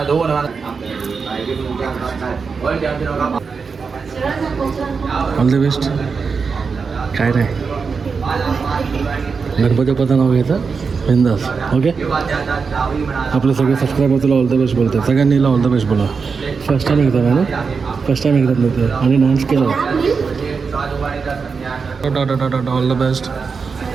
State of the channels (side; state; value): left; quieter; 5.2 dB